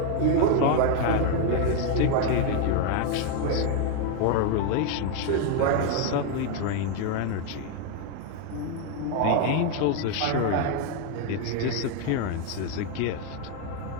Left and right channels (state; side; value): different; both; correlation 0.01